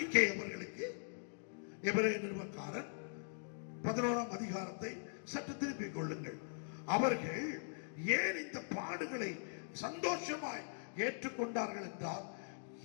அவர்களுக்கு? எபிரேய நிருபக்காரன் 11ஆம் அதிகாரத்தை சற்று திருப்பிக் கொள்ளுங்கள். அவர்கள் ஏன் இந்த பாடுகளை சந்தோஷமாய் ஏற்றுக்கொண்டார்கள் என்றால்,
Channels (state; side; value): silent; right; digital silence